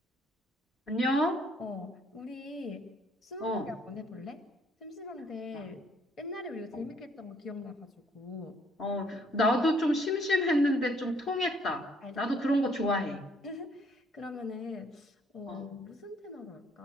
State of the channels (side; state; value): both; normal; correlation 0.65